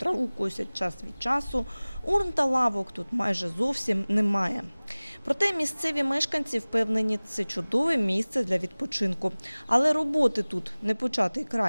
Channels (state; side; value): inverted; both; correlation -1.00